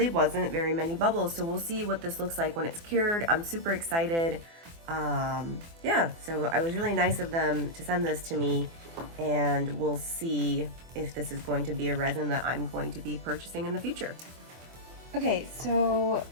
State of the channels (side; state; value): left; late; 24 ms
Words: wasn't very many bubbles. So we'll see what this looks like when it's cured. I'm super excited. Yeah, so it was really nice of them to send this to me, and we'll see if this is going to be a resin that I'm going to be purchasing in the future. Okay, so